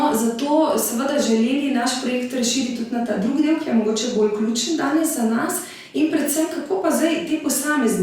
zato seveda želeli naš projekt razširiti tudi na ta drugi del, ki je mogoče bolj ključen danes za nas. In predvsem, kako pa zdaj te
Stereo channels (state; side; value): identical; both; correlation 1.00